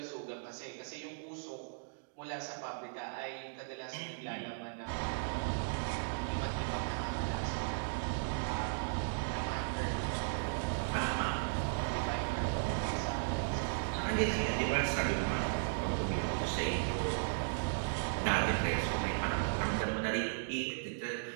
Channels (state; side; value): silent; left; digital silence